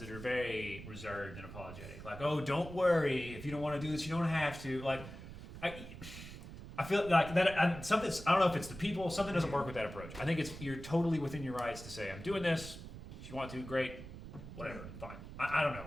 that are very reserved and apologetic. Like, oh, don't worry, if you don't want to do this, you don't have to. Like, I feel like that I don't know if it's the people. Something doesn't work with that approach. I think you're totally within your rights to say, I'm doing this. If you want to, great. Whatever, fine. I don't know,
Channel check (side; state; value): right; noise; rumble, 12 dB below the sound